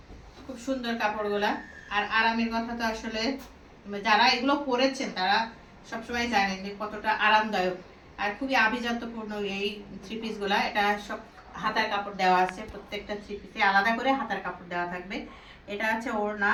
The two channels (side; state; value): both; identical; correlation 1.00